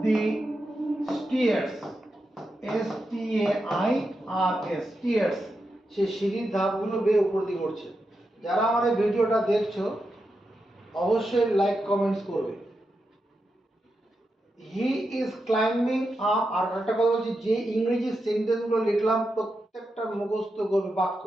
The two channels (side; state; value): both; normal; correlation 0.87